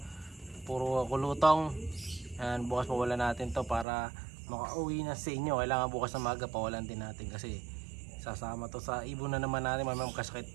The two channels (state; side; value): drops out; left; at 3.9 s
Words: puro kulutong. Ayan, bukas pawala natin to para makauwi na sa inyo. Kailangan bukas na maga, pawalan din natin kasi sasama to sa ibon na naman natin. May